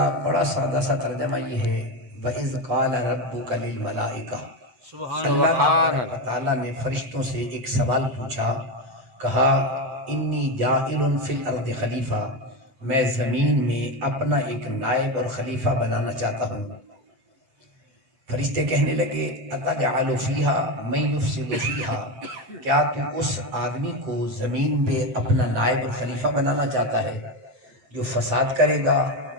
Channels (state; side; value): late; left; 8.0 ms